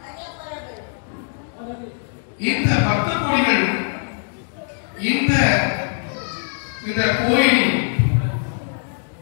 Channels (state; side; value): silent; right; digital silence